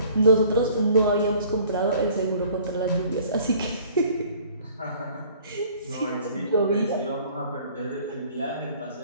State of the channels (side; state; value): both; inverted; correlation -0.53